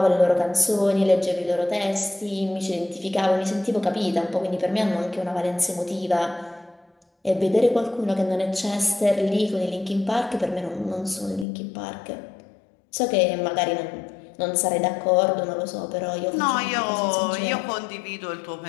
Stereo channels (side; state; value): right; drops out; at 11.5 s